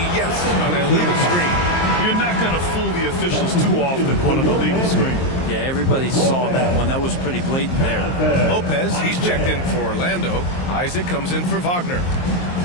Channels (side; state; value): right; late; 23 ms